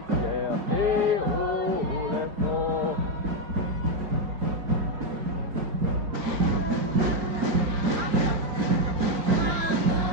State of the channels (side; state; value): left; late; 5.0 ms